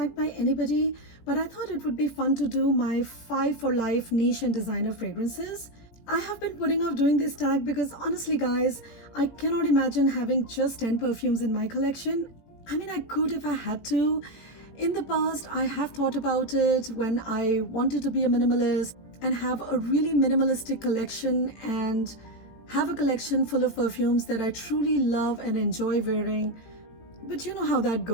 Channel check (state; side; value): late; right; 18 ms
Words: by anybody, but I thought it would be fun to do my 5 for life niche and designer fragrances. I have been putting off doing this tag because honestly guys, I cannot imagine having just 10 perfumes in my collection. I mean, I could if I had to. In the past, I have thought about it when I wanted to be a minimalist and have a really minimalistic collection and have a collection full of perfumes that I truly love and enjoy wearing. But you know how that